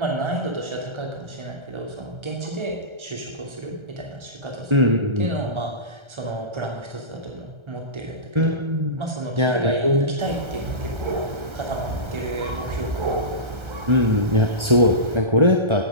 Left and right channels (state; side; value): late; left; 1.3 ms